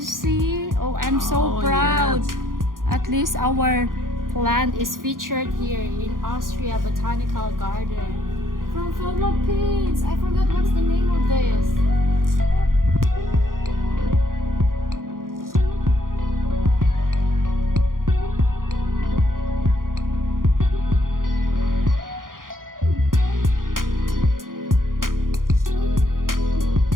see? Oh, I'm so proud. Yes. At least our plant is featured here in Austria Botanical Garden. From Philippines. I forgot what's the name of this.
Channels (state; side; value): late; left; 0.90 ms